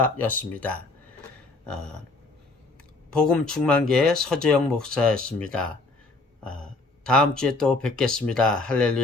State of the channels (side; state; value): right; quieter; 3.4 dB